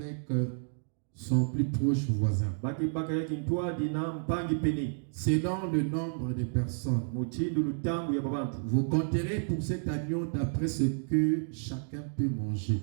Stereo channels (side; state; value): left; silent; digital silence